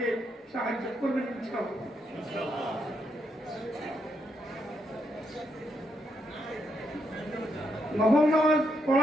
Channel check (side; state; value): both; normal; correlation 0.79